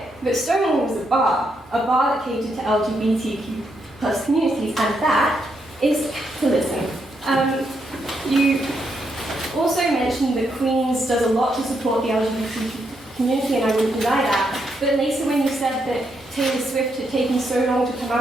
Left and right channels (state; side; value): normal; both; correlation 0.79